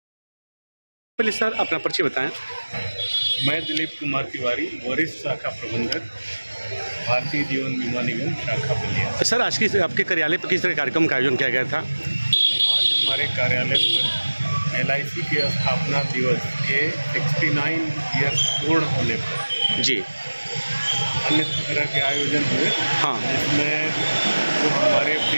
पहले सर अपना परिचय बताएं। मैं दिलीप कुमार तिवारी, वरिष्ठ शाखा प्रबंधक, भारतीय जीवन बीमा निगम शाखा बलिया। सर आज की आपके कार्यालय पर किस तरह कार्यक्रम का आयोजन किया गया था? आज हमारे कार्यालय पर एलआईसी के स्थापना दिवस के 69 ईयर्स पूर्ण होने पर जी अन्य तरह के आयोजन हुए। हाँ। जिसमें जो हमारे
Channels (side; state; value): both; inverted; correlation -1.00